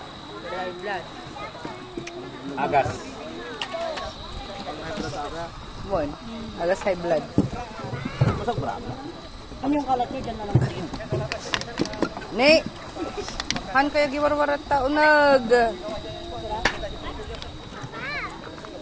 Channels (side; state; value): both; identical; correlation 1.00